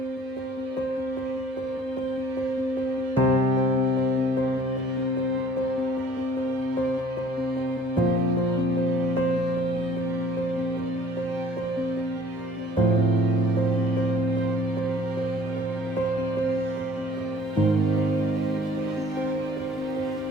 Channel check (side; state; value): both; normal; correlation 0.53